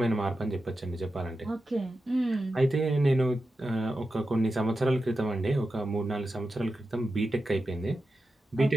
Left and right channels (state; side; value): normal; both; correlation 0.91